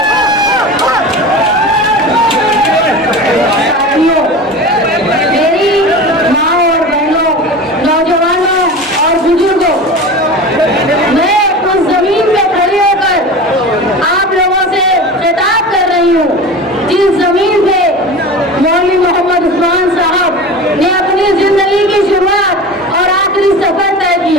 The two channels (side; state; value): both; normal; correlation 0.32